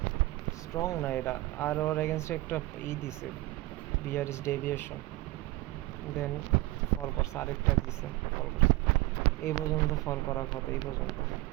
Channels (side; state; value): left; quieter; 19.1 dB